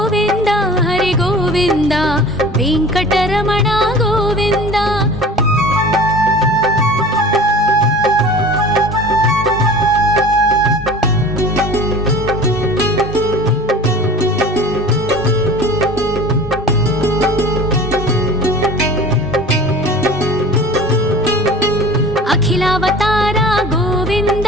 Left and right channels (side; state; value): both; normal; correlation 0.40